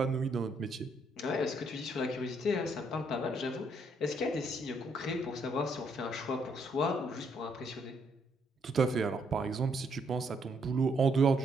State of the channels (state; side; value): normal; both; correlation 0.72